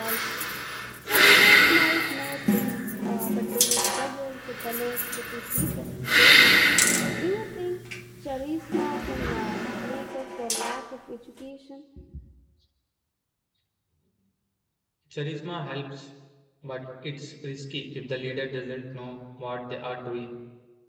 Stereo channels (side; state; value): both; identical; correlation 1.00